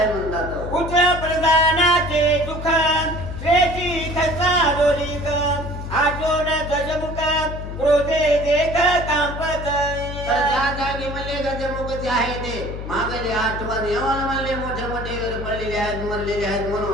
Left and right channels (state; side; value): noise; left; hum, 8 dB below the sound